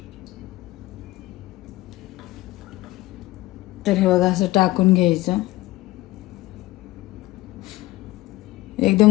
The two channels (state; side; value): quieter; right; 18.2 dB